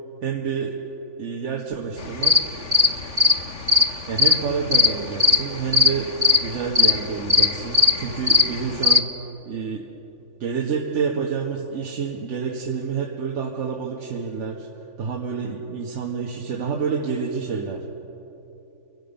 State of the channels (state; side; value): late; left; 3.5 ms